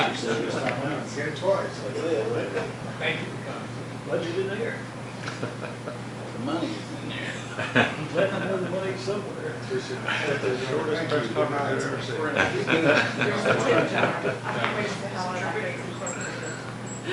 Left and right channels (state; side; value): identical; both; correlation 1.00